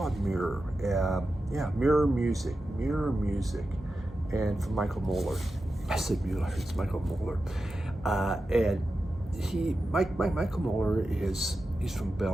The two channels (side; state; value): both; normal; correlation 0.91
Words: Mirror. Mirror Music, and from Michael Muller. I said Muller. It's Michael Muller, and Michael Muller he's from